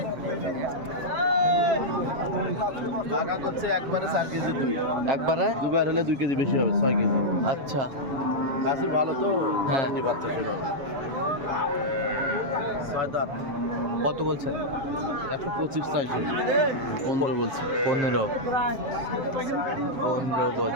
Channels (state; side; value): late; left; 7.5 ms